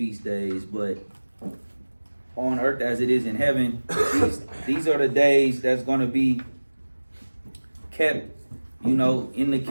days, but on earth as it is in heaven, these are the days that's going to be kept, in the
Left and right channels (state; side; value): inverted; both; correlation -1.00